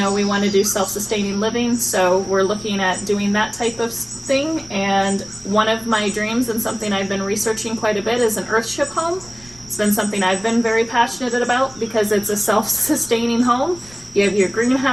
we want to do self-sustaining living. So we're looking at doing that type of thing. And one of my dreams and something I've been researching quite a bit is an Earthship home. It's been something I've been very passionate about because it's a self-sustaining home. You have your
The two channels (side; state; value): right; noise; rumble, 23 dB below the sound